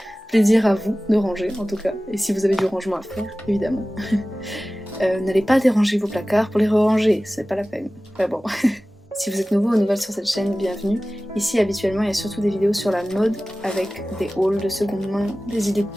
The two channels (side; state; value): both; normal; correlation 0.97